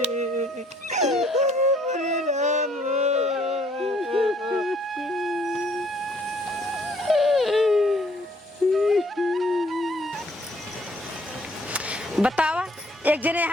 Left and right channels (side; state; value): both; normal; correlation 0.63